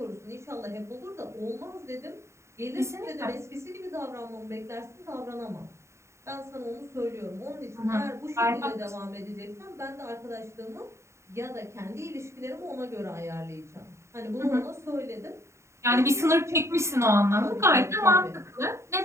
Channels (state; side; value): late; left; 0.14 ms